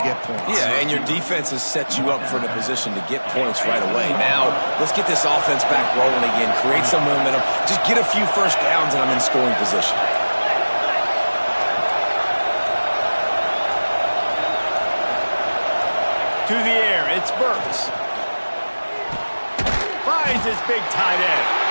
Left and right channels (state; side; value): inverted; both; correlation -1.00